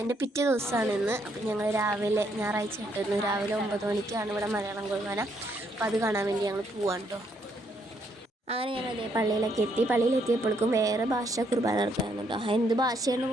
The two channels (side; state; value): both; normal; correlation 0.73